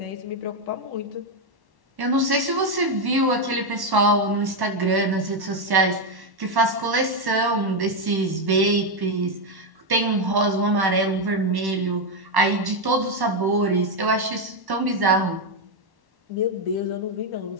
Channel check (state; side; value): late; left; 1.1 ms